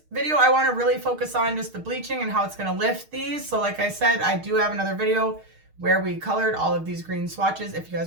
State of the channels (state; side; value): late; left; 6.5 ms